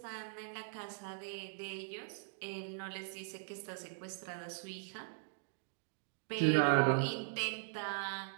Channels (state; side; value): silent; left; digital silence